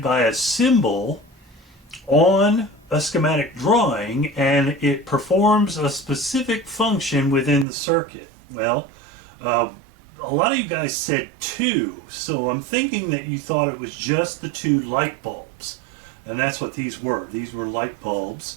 by a symbol on a schematic drawing, and it performs a specific function within the circuit. Well, a lot of you guys said two, so I'm thinking that you thought it was just the two light bulbs, and that's what these were. These were light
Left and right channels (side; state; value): left; drops out; at 7.7 s